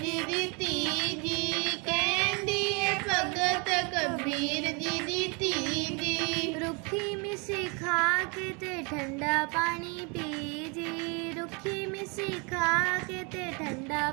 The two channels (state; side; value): quieter; left; 31.9 dB